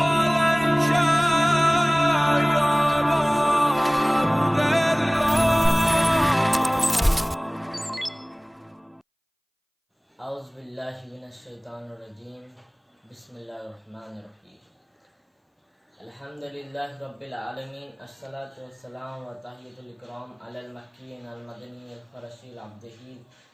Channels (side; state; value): both; identical; correlation 1.00